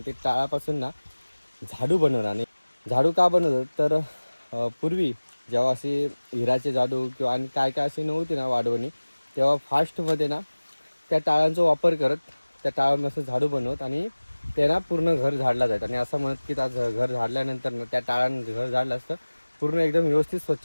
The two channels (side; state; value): both; inverted; correlation -1.00